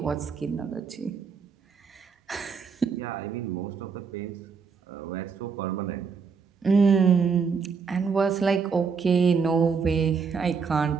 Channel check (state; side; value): quieter; left; 5.6 dB